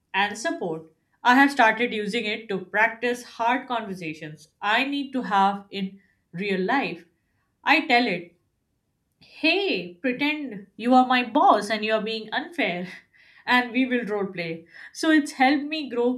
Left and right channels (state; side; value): identical; both; correlation 1.00